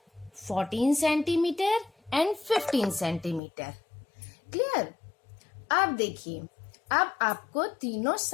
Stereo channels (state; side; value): drops out; right; at 3.4 s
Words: 14 centimetre and 15 centimetre. Clear? अब देखिए, अब आपको तीनों